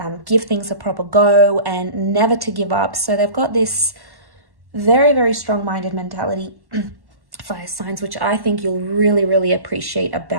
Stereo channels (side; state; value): left; late; 1.1 ms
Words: give things a proper go and never to give up. So they've got this very, very strong-minded mentality, fire signs, which I think you'll really, really appreciate